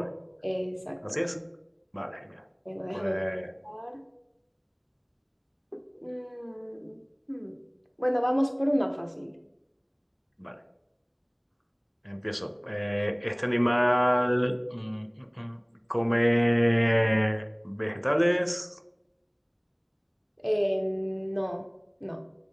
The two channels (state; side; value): identical; both; correlation 1.00